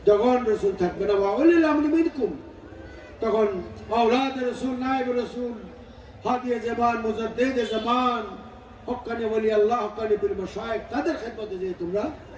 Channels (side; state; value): both; identical; correlation 1.00